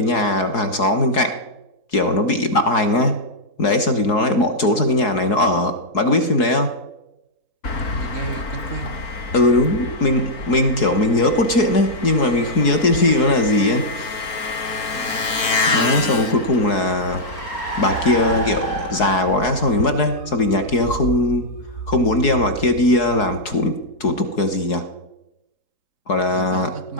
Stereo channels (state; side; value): late; right; 4.5 ms